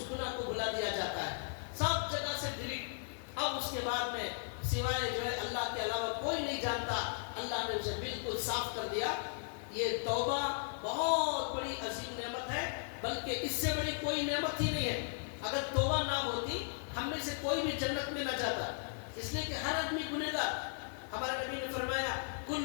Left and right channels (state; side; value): silent; right; 53 dB below the other